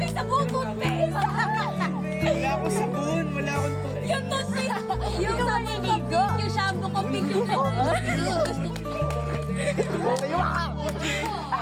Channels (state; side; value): identical; both; correlation 1.00